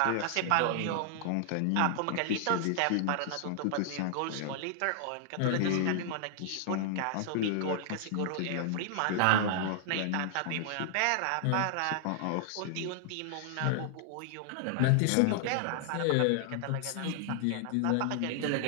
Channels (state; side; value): different; both; correlation -0.01